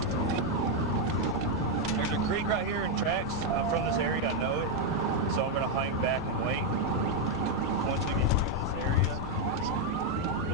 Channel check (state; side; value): noise; right; hum, 18 dB below the sound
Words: There's a creek right here in tracks. I'm from this area. I know it. So I'm going to hang back and wait. Once we get through this area,